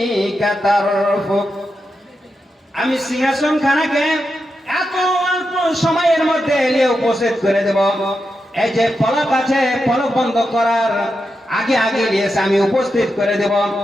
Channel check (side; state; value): both; normal; correlation 0.87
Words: طرفك। আমি সিংহাসন খানাকে এত অল্প সময়ের মধ্যে এলে উপস্থিত করে দেব। এই যে পলক আছে, পলক বন্ধ করার আগে আগে এসে আমি উপস্থিত করে দেব।